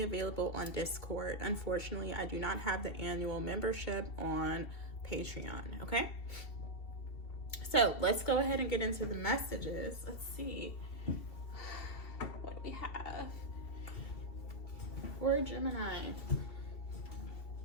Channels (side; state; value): right; late; 2.7 ms